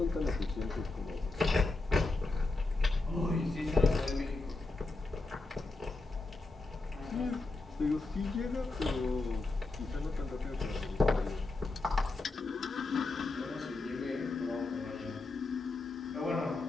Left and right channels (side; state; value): right; quieter; 3.3 dB